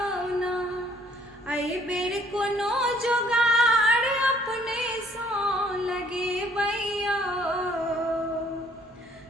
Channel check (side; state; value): both; normal; correlation 0.61